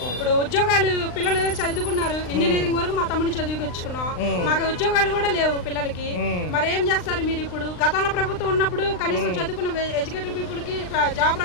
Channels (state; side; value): late; right; 39 ms